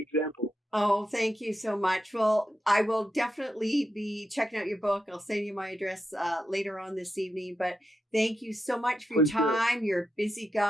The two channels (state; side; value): normal; both; correlation 0.86